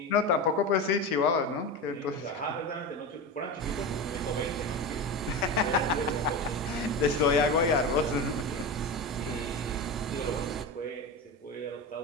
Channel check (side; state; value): both; normal; correlation 0.23